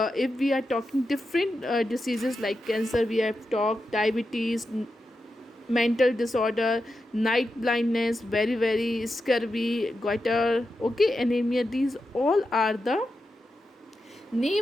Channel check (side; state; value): both; normal; correlation 0.89